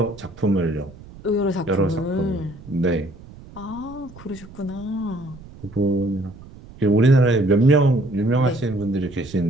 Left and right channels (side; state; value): right; noise; rumble, 19 dB below the sound